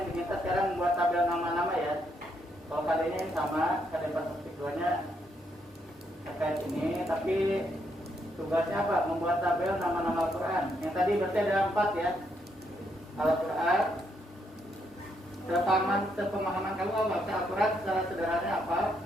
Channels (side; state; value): both; normal; correlation 0.76